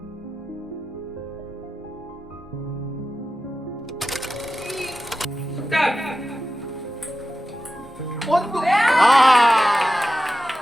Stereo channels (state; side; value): normal; both; correlation 0.92